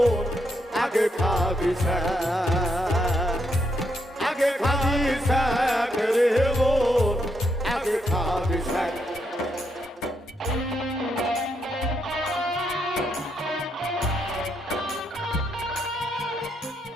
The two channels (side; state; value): both; normal; correlation 0.78